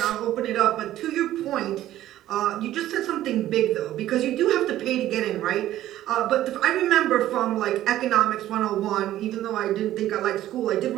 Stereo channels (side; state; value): left; quieter; 13.6 dB